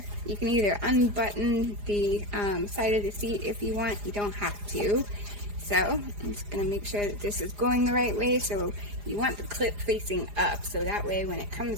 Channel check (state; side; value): late; left; 4.9 ms